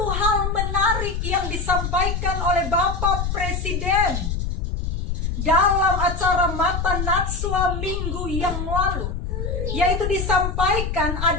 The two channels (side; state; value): left; noise; rumble, 2 dB below the sound